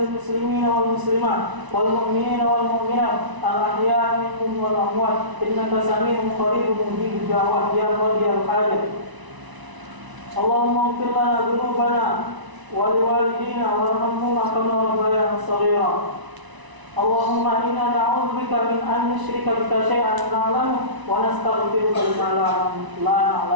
muslimina wal muslimat wal mu'minina wal mu'minat al ahya'i minhum wal amwat innaka sami'un qaribun mujibud da'wat ya qadiyal hajat. Allahumma ighfir lana dhunubana wa liwalidina warhamhuma kama rabbayana shaghira. Allahumma inna na'udzubika min an nusyrika bika syai'an na'lamu wa nastaghfiruka lima la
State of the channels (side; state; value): left; late; 1.0 ms